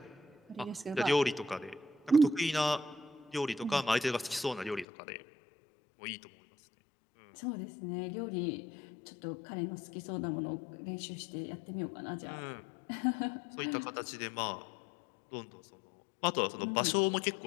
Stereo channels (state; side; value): drops out; right; at 4.9 s